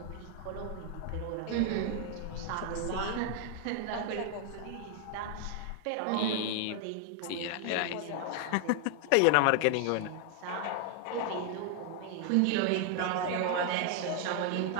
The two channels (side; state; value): both; different; correlation 0.00